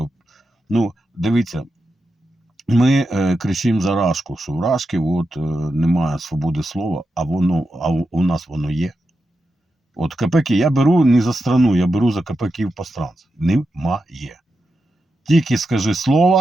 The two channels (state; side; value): normal; both; correlation 0.88